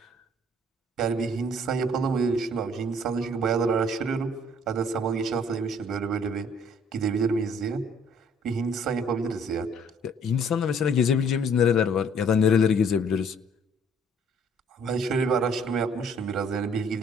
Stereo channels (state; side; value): normal; both; correlation 0.59